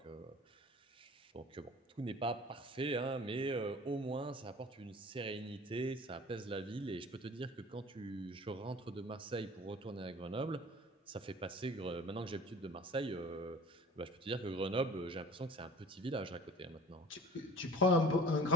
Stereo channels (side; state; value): both; normal; correlation 0.45